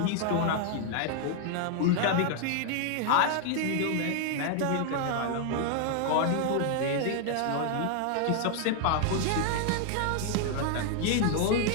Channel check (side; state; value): both; different; correlation 0.00